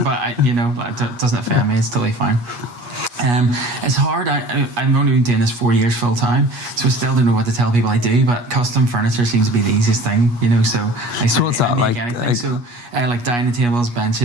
but, it doesn't offend me. It's totally fine. It's hard. I'm only been doing this 4 years full time, so I still don't know what to tell people I do. But custom furniture seems to be the easiest thing, So what's that like? So like dining tables,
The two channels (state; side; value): late; left; 8.3 ms